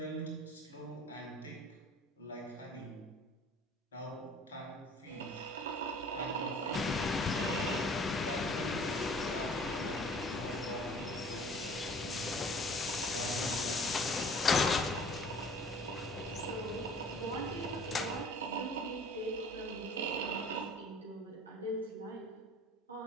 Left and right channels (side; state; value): both; normal; correlation 0.49